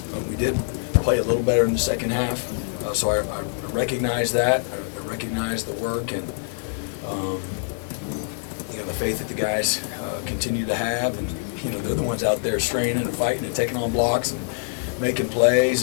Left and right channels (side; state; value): right; silent; 62 dB below the other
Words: We did play a little better in the second half, so I recognize that. I recognize the work and the faith that the guys continue to have, and they're the ones out there straining and fighting and taking on blocks and making plays.